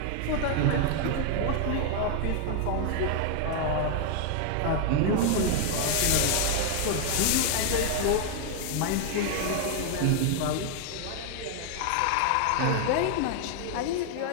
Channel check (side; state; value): both; different; correlation 0.00